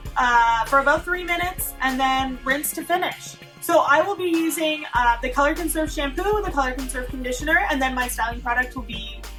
for about 3 minutes and then rinse to finish. So I will be using the Color Conserve shampoo, the Color Conserve conditioner, and then my styling product will be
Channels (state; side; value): identical; both; correlation 1.00